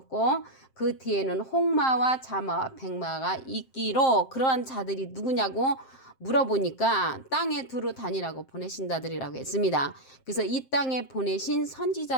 그 뒤에는 홍마와 자마와 백마가 있기로 그러한 자들이 누구냐고 물어보니까 땅에 두루 다니라고 보내신 자들이라고 했습니다. 그래서 이 땅에 보내신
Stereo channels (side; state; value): right; late; 7.6 ms